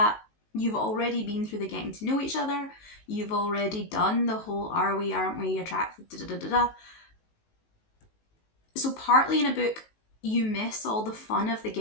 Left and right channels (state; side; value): late; right; 19 ms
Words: You've already been through the getting to know each other. You've already done the whole are we, aren't we attracted, da da da da. So partly in a book, you miss all the fun of the